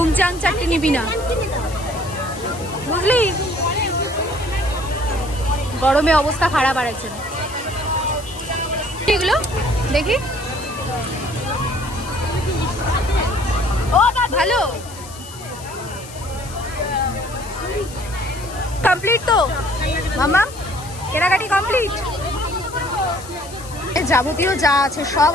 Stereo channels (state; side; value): noise; left; hiss, 16 dB below the sound